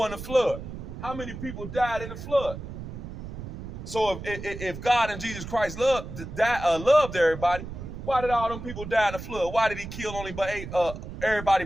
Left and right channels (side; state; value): right; noise; rumble, 10 dB below the sound